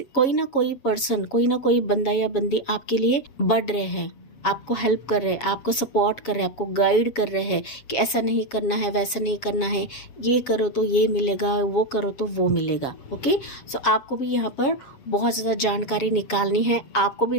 कोई ना कोई पर्सन, कोई ना कोई बंदा या बंदी आपके लिए बढ़ रहे हैं, आपको हेल्प कर रहे हैं, आपको सपोर्ट कर रहे हैं, आपको गाइड कर रहे हैं कि ऐसा नहीं करना है, वैसा नहीं करना है, ये करो तो ये मिलेगा, वो करो तो वो मिलेगा। ओके, सो आपको भी यहाँ पर बहुत ज़्यादा जानकारी निकालनी है, आपको भी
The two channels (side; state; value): right; late; 7.3 ms